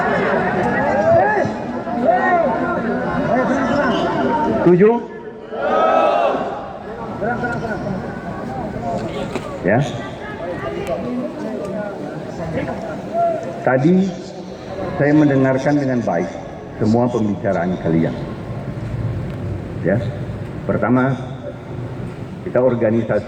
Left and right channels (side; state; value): both; identical; correlation 1.00